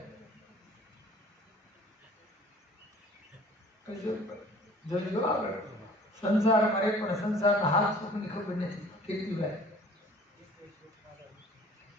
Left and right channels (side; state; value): both; normal; correlation 0.50